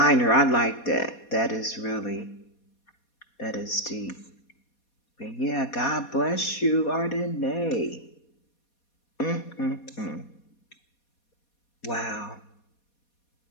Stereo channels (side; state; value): right; late; 4.2 ms